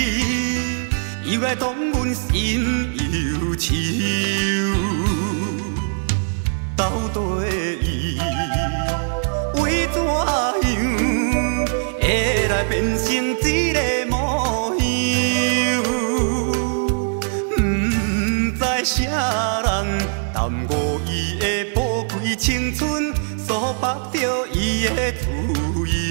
又来当阮心忧愁。到底伊为怎样会来变成这个模样？不知啥人耽误伊的宝贵青春，所绑着伊的自由。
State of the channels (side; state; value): left; silent; 63 dB below the other